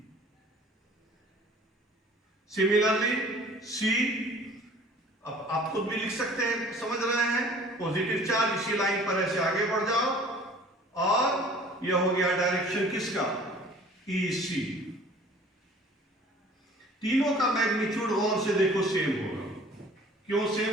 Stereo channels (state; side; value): normal; both; correlation 0.49